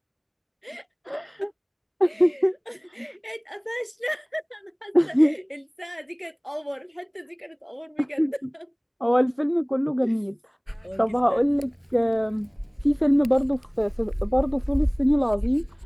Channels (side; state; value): both; identical; correlation 1.00